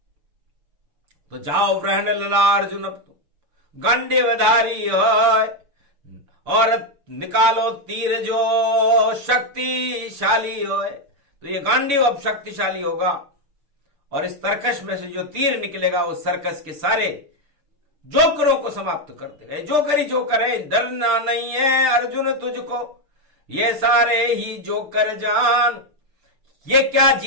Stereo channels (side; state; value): left; late; 6.6 ms